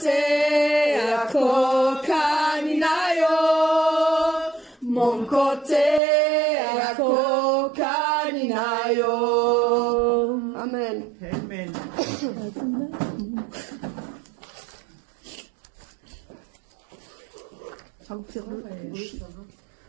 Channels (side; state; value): left; drops out; at 6.0 s